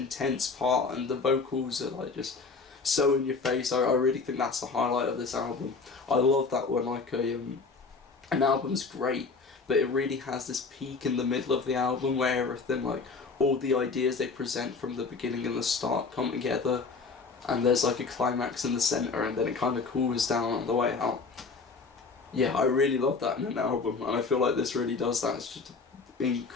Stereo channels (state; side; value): quieter; right; 4.5 dB